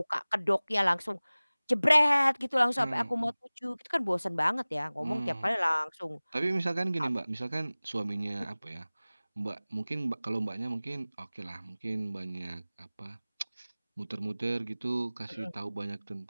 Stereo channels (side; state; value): both; inverted; correlation -0.99